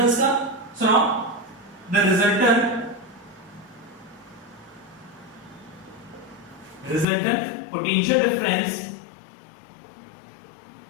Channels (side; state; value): right; drops out; at 7.1 s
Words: का। So now the resultant potential